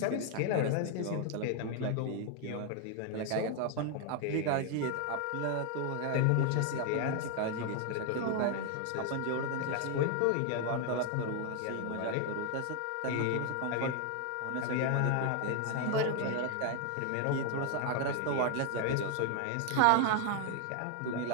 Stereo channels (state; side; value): different; both; correlation 0.01